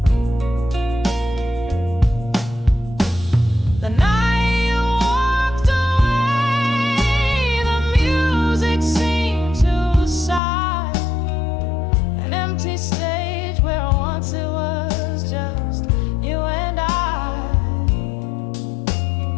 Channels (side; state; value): right; drops out; at 10.4 s